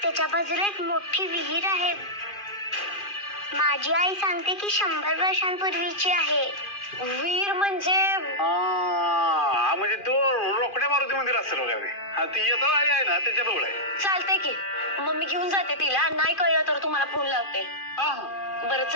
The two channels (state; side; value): late; right; 2.5 ms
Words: त्याच्या बाजूला एक मोठी विहीर आहे. माझी आई सांगते की 100 वर्षांपूर्वीची आहे. वीर म्हणजे? म्हणजे तो रोकड्या मारुती मंदिर असेल बघा ते. ती येता आली आहे ना त्याच्या जवळ आहे. चालतंय की, मम्मी घेऊन जाते तिला. नाही कळलं तर तुम्हाला फोन लावते. बरं